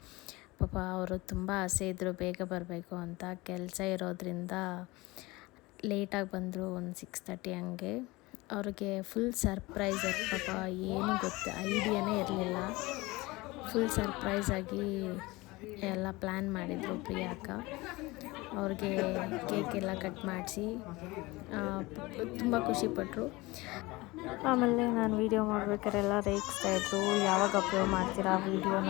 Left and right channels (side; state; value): right; quieter; 21.9 dB